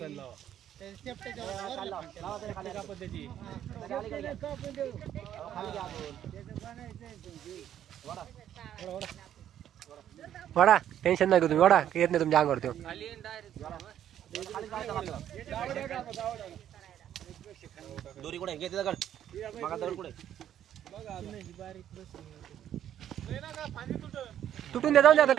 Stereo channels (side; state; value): left; quieter; 10.7 dB